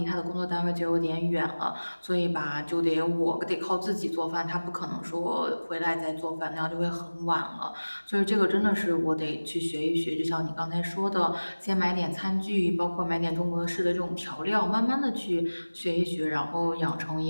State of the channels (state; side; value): inverted; both; correlation -1.00